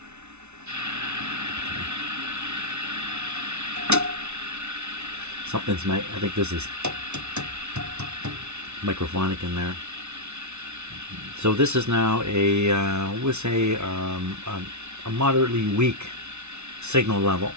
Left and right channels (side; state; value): left; late; 0.81 ms